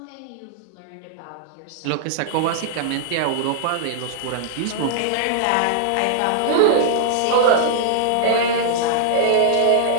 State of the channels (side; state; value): both; different; correlation -0.01